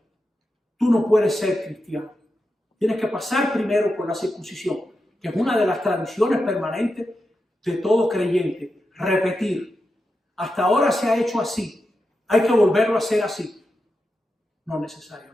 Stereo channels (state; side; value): normal; both; correlation 0.89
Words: tú no puedes ser cristiano. Tienes que pasar primero por la circuncisión, que es una de las tradiciones permanentes de todo creyente. Repetir. Hasta ahora se ha hecho así. Hay que volverlo a hacer así. No